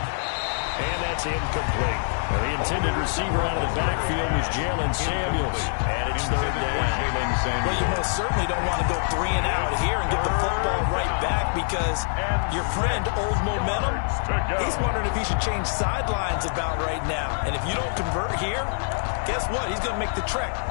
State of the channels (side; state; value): right; silent; digital silence